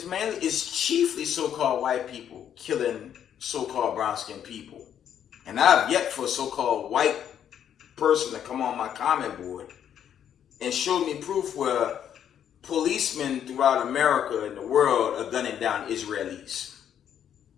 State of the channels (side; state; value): right; quieter; 9.4 dB